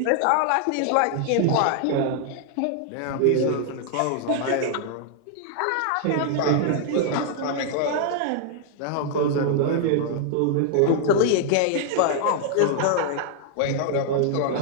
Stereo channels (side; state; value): both; different; correlation -0.01